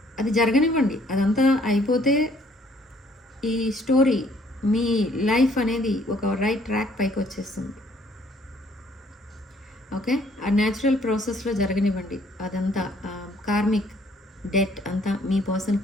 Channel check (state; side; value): normal; both; correlation 0.62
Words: అది జరగనివ్వండి, అదంతా అయిపోతే ఈ స్టోరీ మీ లైఫ్ అనేది ఒక రైట్ ట్రాక్ పైకి వచ్చేస్తుంది. ఓకే, ఆ న్యాచురల్ ప్రాసెస్లో జరగనివ్వండి. అదంతా కార్మిక్ డెట్ అంతా మీ పర్సన్